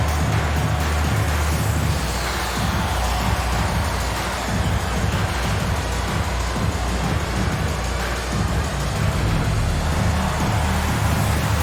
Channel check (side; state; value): both; identical; correlation 1.00